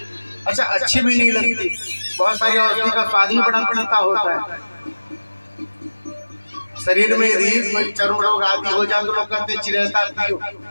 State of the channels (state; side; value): inverted; both; correlation -1.00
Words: अच्छा, अच्छी भी नहीं लगती, बहुत सारी औषधि का स्वाद भी बड़ा पड़ता होता है। शरीर में यदि कोई चर्म रोग आदि हो जाए तो लोग कहते चिरैता पियो,